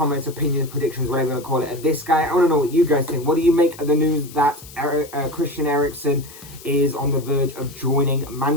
opinions, predictions, whatever you want to call it, of this guy. I want to know what you guys think. What do you make of the news that Christian Eriksen is on the verge of joining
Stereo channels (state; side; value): noise; left; hiss, 18 dB below the sound